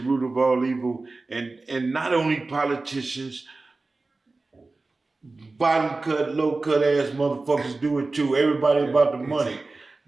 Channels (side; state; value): left; quieter; 3.5 dB